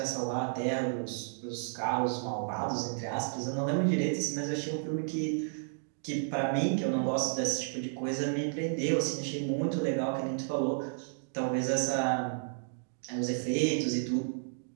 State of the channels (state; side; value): silent; left; digital silence